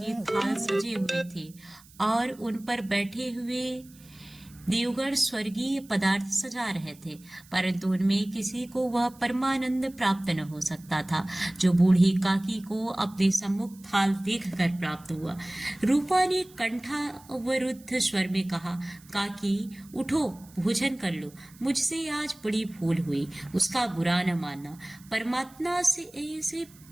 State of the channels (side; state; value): right; noise; hiss, 25 dB below the sound